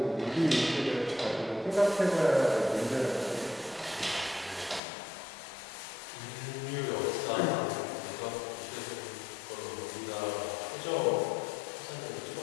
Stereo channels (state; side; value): drops out; right; at 4.8 s